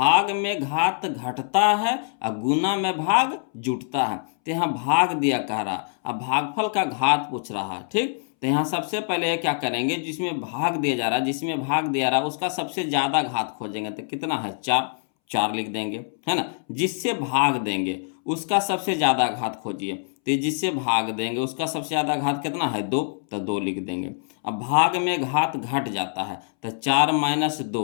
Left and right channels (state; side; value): silent; right; 62 dB below the other